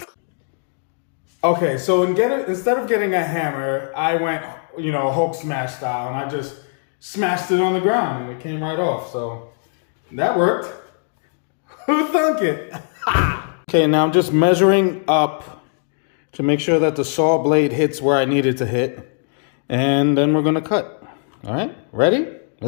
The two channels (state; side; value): silent; right; digital silence